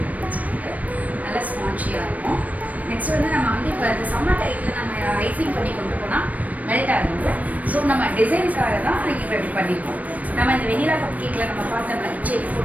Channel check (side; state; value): left; late; 0.071 ms